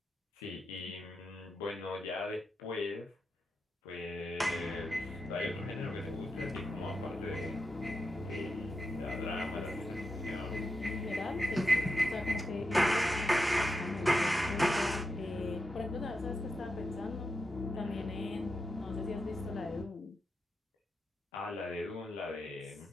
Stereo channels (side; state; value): both; normal; correlation 0.87